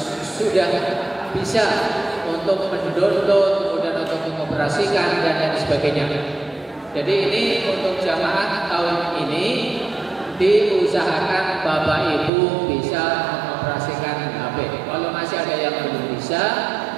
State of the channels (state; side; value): drops out; left; at 12.3 s